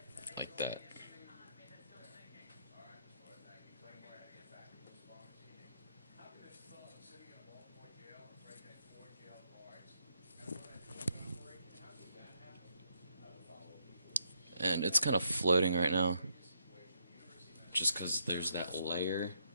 Like that. And it's kind of floating right now, just because there's that layer,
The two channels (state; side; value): inverted; both; correlation -0.76